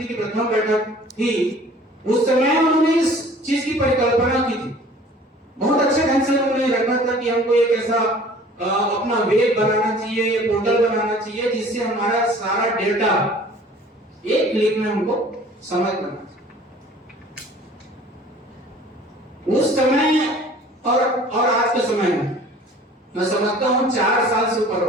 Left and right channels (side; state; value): both; normal; correlation 0.49